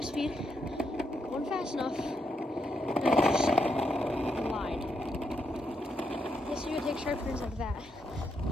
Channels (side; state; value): both; normal; correlation 0.80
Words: speed, going fast enough, and I just glide. Yes, you can take sharp turns like that,